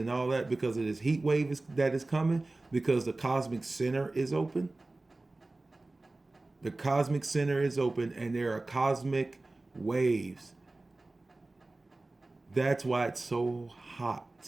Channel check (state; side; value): quieter; left; 3.0 dB